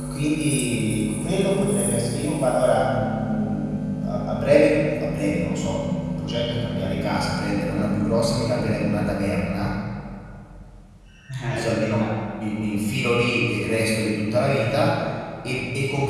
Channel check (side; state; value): both; identical; correlation 1.00